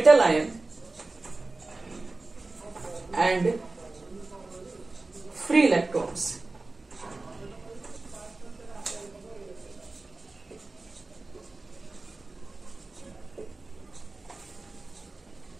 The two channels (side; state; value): left; quieter; 3.3 dB